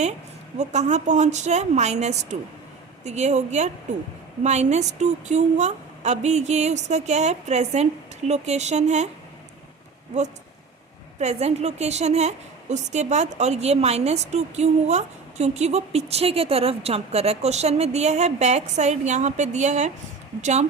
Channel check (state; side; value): quieter; left; 4.9 dB